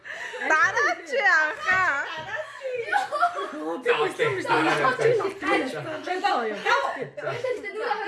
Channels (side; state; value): both; identical; correlation 1.00